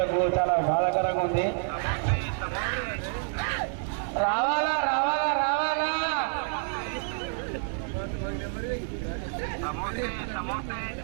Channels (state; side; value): silent; left; 59 dB below the other